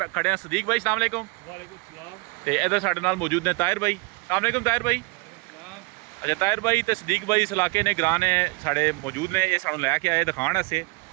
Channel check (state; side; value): quieter; left; 27.4 dB